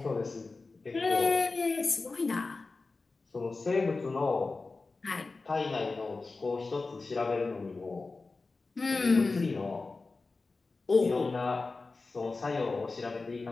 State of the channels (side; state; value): right; quieter; 3.8 dB